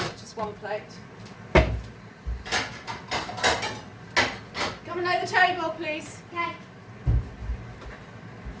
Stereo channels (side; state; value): both; identical; correlation 1.00